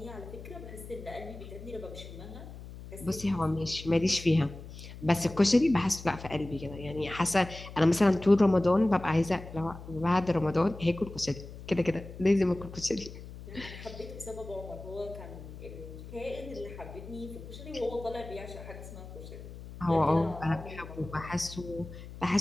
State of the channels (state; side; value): noise; left; hum, 14 dB below the sound